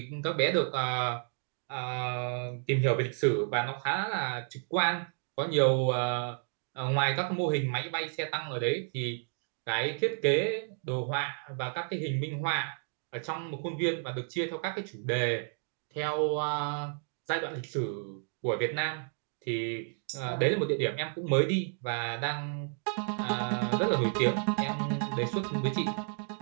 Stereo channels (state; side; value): silent; left; 56 dB below the other